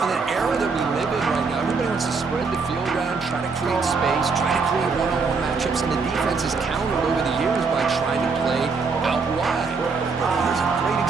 in an era that we live in right now, everybody wants to spread the field around, try to create space, try to create one-on-one matchups, and the defense has countered over the years by trying to play out wide. Here's a great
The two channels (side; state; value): left; quieter; 4.7 dB